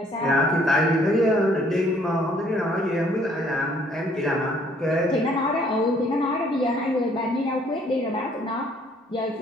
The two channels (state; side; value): normal; both; correlation 0.62